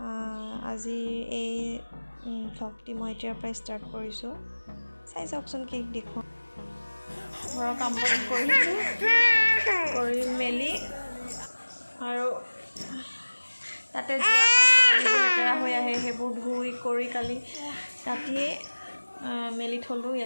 আজি এই ভ্লগটি মই এতিয়াৰ পৰাই ষ্টাৰ্ট কৰিছোঁ। চাই চাওকচোন কি দেখোঁ। ঘৰৰ কাম বন কৰি মেলি আৰু তাতে যোৱা কাপোৰ কানিবোৰ লেতেৰা হৈ আহে, সেইবোৰ ধুই কৰি কালি ৰাতিয়ে মেলি থলোঁ।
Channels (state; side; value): inverted; both; correlation -1.00